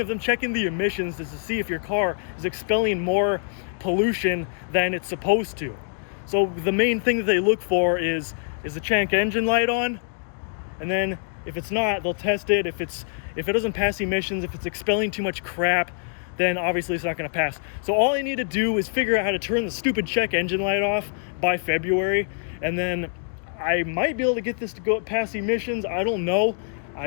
them checking the emissions is to see if your car is expelling more pollution than it's supposed to. So the main thing that they look for is the check engine light on, and then if it's not, they'll test it. If it doesn't pass emissions, if it's expelling too much crap, then obviously it's not going to pass. So all I need to do is figure out how to turn the stupid check engine light off by February, and then I might be able to get this to go past emissions. I don't know.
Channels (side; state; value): right; silent; digital silence